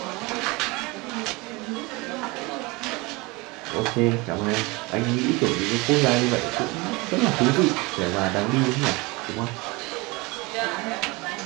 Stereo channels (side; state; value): left; quieter; 24.8 dB